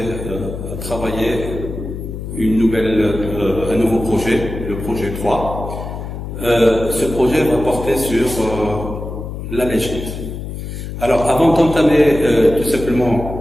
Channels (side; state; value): left; noise; hum, 7 dB below the sound